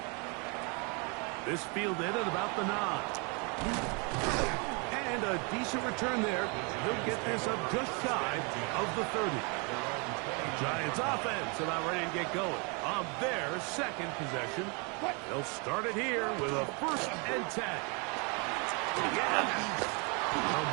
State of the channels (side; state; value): left; quieter; 32.8 dB